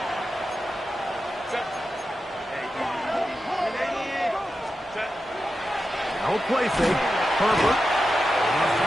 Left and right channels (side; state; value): both; normal; correlation 0.90